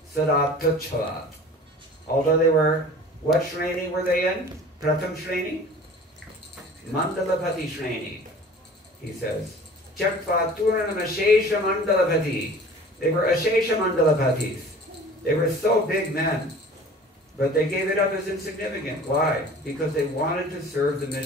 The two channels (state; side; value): normal; both; correlation 0.44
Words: Sadat Tuchalat. Although they were, what Shreni were they in? Pratham Shreni? Mandalapati Shreni, he says. Tyaktva Turnamashesha Mandalapati. They were Ashesha Mandalapatis. They were so big men. But they gave it up as insignificant. Why? Because they wanted to serve the